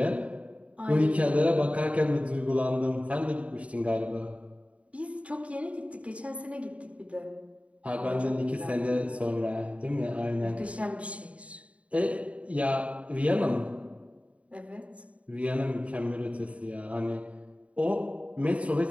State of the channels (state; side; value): late; left; 0.064 ms